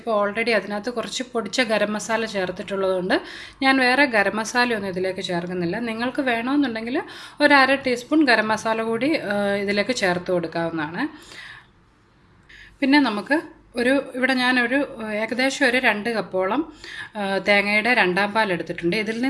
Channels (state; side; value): identical; both; correlation 1.00